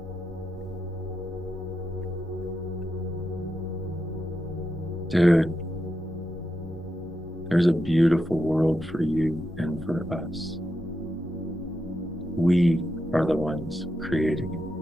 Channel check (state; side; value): normal; both; correlation 0.86